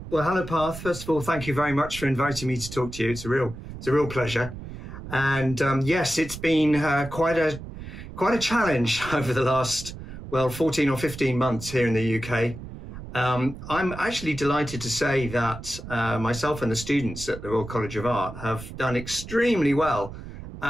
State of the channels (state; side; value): noise; right; rumble, 12 dB below the sound